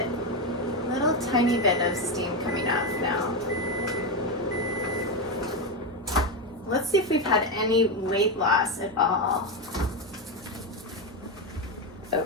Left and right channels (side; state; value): both; normal; correlation 0.11